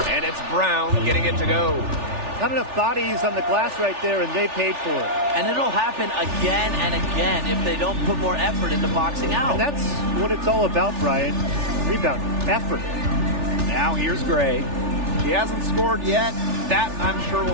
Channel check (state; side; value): late; left; 3.4 ms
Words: And it's Brown getting it to go. Not enough bodies on the glass right there, and they paid for it. And it'll happen again and again if they don't put more effort into boxing out. And that's what it's all about, Brian. Rebound, effort. Now here's Gray. She hasn't scored yet. That, I'm sure,